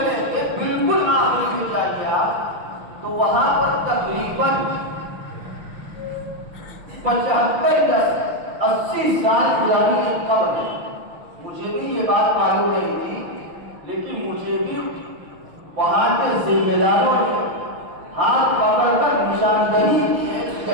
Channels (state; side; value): late; left; 6.2 ms